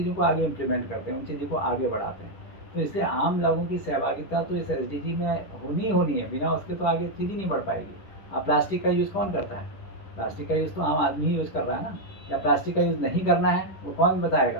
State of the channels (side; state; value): right; late; 10 ms